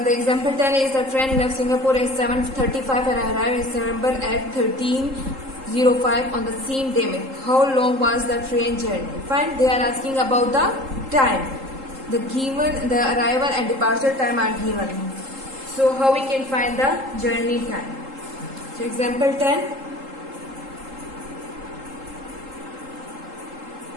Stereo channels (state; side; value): late; left; 3.7 ms